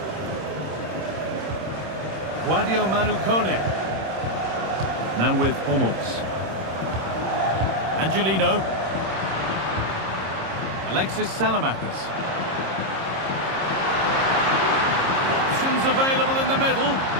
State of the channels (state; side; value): late; left; 26 ms